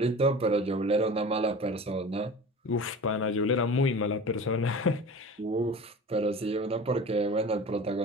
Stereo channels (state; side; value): normal; both; correlation 0.37